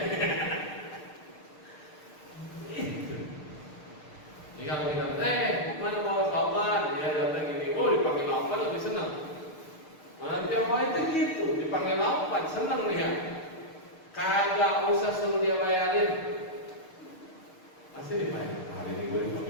Ini kalau kita, mana mau sauban? Dia datang gini, dipanggil laupan lebih senang. Mana tiap hari itu gitu, dipanggil laupan, senang dia. Kagak usah suruh dia bayarin, pasti dibayar. Hari ini gue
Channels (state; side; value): late; right; 6.6 ms